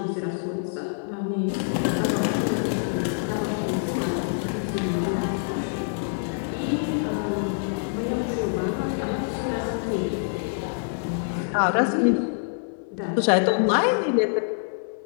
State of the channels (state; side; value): silent; right; digital silence